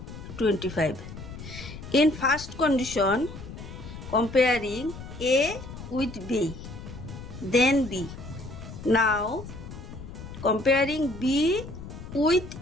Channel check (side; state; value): left; noise; rumble, 12 dB below the sound